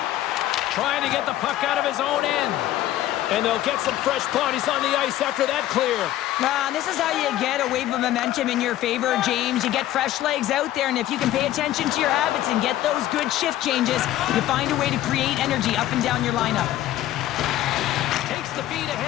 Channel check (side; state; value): right; quieter; 13.8 dB